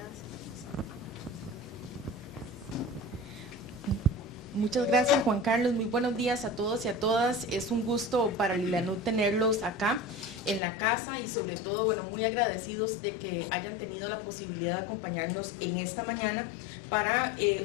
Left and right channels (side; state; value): right; drops out; at 10.6 s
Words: Muchas gracias, Juan Carlos. Muy buenos días a todos y a todas. Es un gusto para Lilanud tenerlos acá en la casa y sobre todo, bueno, muy agradecidos de que hayan tenido la posibilidad de acompañarnos en esta mañana para